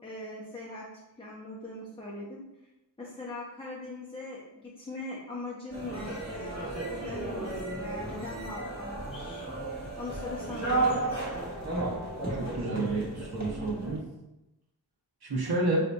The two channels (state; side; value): normal; both; correlation 0.03